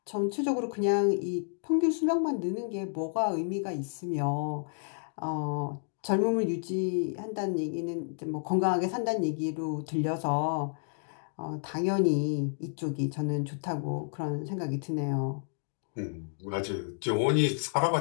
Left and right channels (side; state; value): right; silent; digital silence